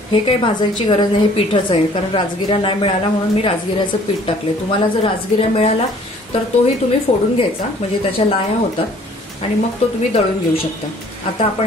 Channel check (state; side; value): normal; both; correlation 0.56